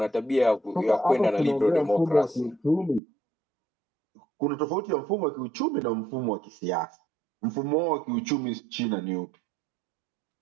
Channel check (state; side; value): drops out; left; at 3.0 s